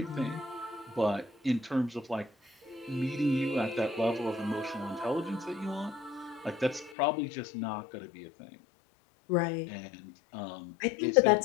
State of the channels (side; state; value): right; drops out; at 7.0 s